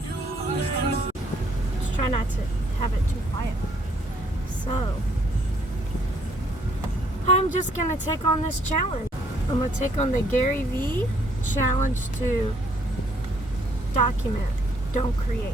Just try not to have it too quiet. So, I'm just going to take on this challenge. I'm going to take on the Gary V challenge to document, don't create.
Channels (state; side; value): normal; both; correlation 0.66